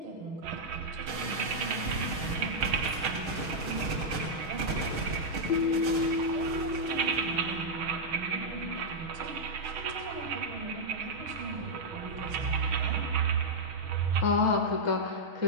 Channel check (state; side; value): late; left; 6.3 ms